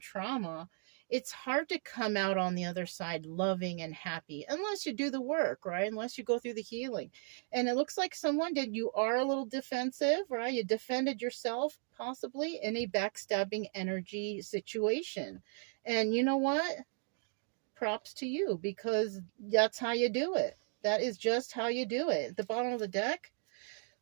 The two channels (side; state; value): left; silent; 54 dB below the other